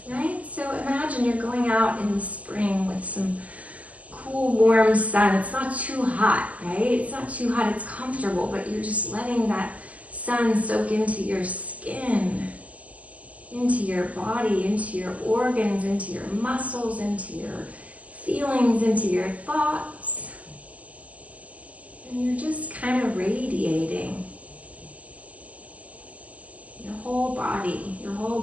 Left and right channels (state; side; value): late; left; 0.071 ms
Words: right? So imagine you're going out in the spring with some cool, warm sun. It's not too hot, right? It's not too hot, it's comfortable, but you're just letting that sun soak into your skin, into your body, into your organs, into your muscles, into your feelings, into your thoughts. And you're just kind of radiating. Your whole body, your